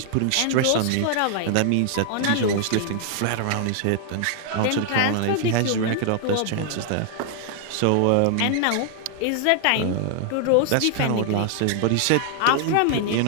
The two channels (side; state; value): both; different; correlation 0.00